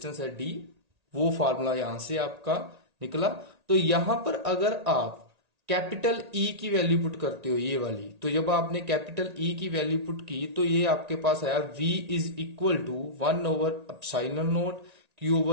है डी, वो फार्मूला यहां से आपका निकला। तो यहां पर अगर आप कैपिटल ई की वैल्यू पुट करते हो, ये वाली, तो जब आपने कैपिटल ई की वैल्यू पुट की तो ये आपके पास आया v is equal to 1 over epsilon naught q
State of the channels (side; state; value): left; late; 1.8 ms